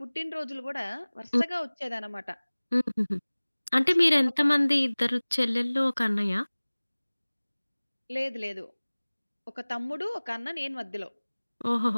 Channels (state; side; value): inverted; both; correlation -1.00